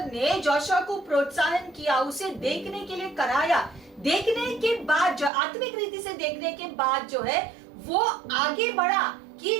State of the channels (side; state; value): left; drops out; at 5.3 s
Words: ने Joshua को प्रोत्साहन किया, उसे देखने के लिए कराया, देखने के बाद जो आत्मिक रीति से देखने के बाद जो है वो आगे बढ़ा कि